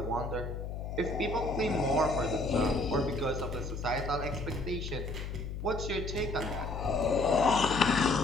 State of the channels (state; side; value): noise; left; hum, 6 dB below the sound